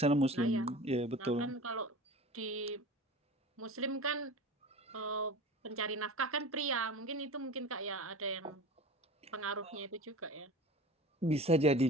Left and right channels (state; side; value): normal; both; correlation 0.36